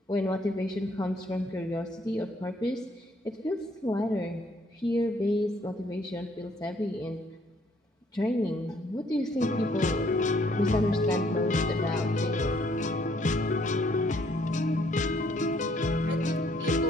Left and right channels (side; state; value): both; normal; correlation 0.66